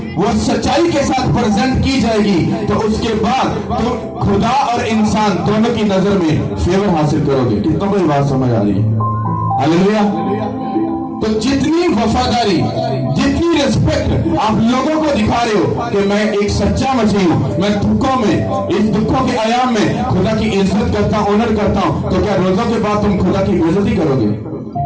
वो सच्चाई के साथ प्रेजेंट की जाएगी तो उसके बाद तुम खुदा और इंसान दोनों की नजर में फेवर हासिल करोगे। कितनों को ये बात समझ आ रही है? हालेलुया! तो जितनी वफादारी, जितनी रिस्पेक्ट आप लोगों को दिखा रहे हो कि मैं एक सच्चा मसीह हूं, मैं दुखों में, इस दुखों के आयाम में खुदा की इज्जत करता हूं, ऑनर करता हूं, तो क्या रोजों के बाद तुम खुदा की बेइज्जती करोगे?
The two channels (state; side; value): identical; both; correlation 1.00